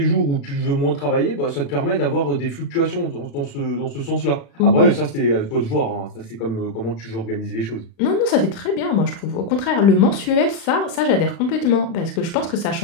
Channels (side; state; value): right; late; 36 ms